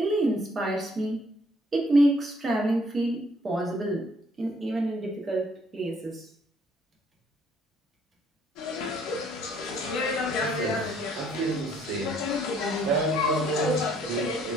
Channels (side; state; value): both; normal; correlation 0.64